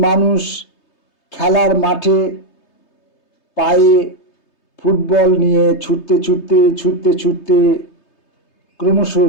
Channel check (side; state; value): right; late; 3.3 ms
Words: মানুষ খেলার মাঠে পায়ে ফুটবল নিয়ে ছুটতে ছুটতে ছুটতে ছুটতে ক্রমশ